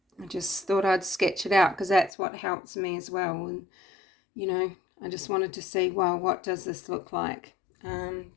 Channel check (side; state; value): right; drops out; at 2.1 s